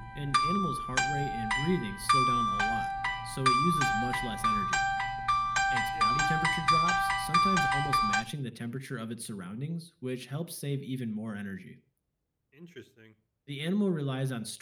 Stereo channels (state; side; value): identical; both; correlation 1.00